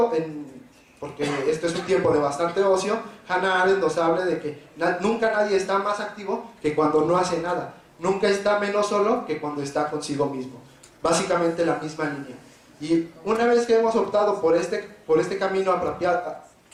porque esto es un tiempo de bastante ocio, Hannah Arendt nos habla de que nunca nadie está más activo que cuando no hace nada, nunca está menos solo que cuando está consigo mismo. Básicamente la misma línea. Y una vez que hemos optado por este camino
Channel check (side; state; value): both; identical; correlation 1.00